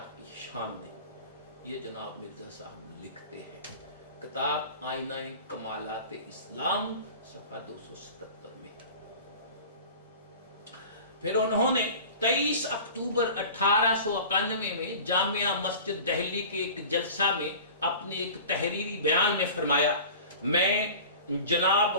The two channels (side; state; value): both; inverted; correlation -0.39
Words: کی شان نے. یہ جناب مرزا صاحب لکھتے ہیں کتاب آئینہ کمالات اسلام صفحہ 277 میں. پھر انہوں نے 23 اکتوبر 1891 میں جامعہ مسجد دہلی کے ایک جلسہ میں اپنے ایک تحریری بیان میں فرمایا میں جناب